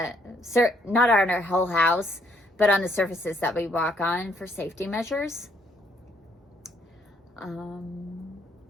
not on our whole house, but on the surfaces that we walk on for safety measures.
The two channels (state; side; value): normal; both; correlation 0.69